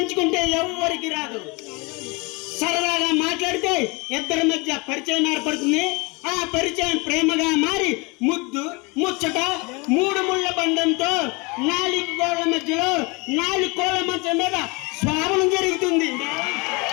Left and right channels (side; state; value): right; quieter; 28.0 dB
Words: ఎవరికి రాదు. సరదాగా మాట్లాడితే ఇద్దరి మధ్య పరిచయం ఏర్పడుతుంది. ఆ పరిచయం ప్రేమగా మారి ముద్దు ముచ్చట 3 ముళ్ళ బంధంతో 4 గోళ్ల మధ్యలో 4 కోళ్ల మంచం మీద శ్రావణం జరుగుతుంది.